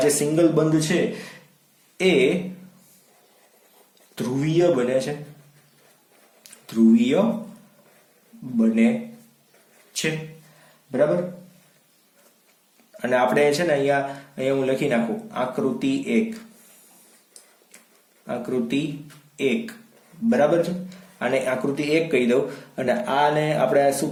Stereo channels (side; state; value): both; identical; correlation 1.00